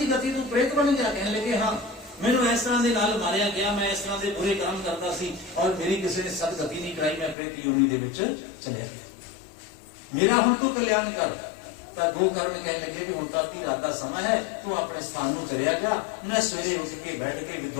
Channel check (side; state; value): right; drops out; at 7.4 s